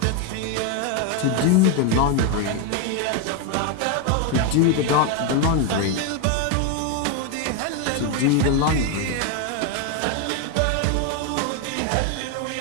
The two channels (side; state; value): both; different; correlation 0.01